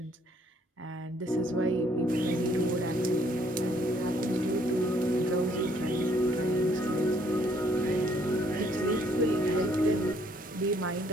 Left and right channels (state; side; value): normal; both; correlation 0.65